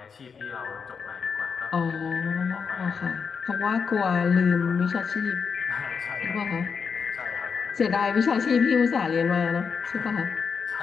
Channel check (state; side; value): quieter; right; 5.9 dB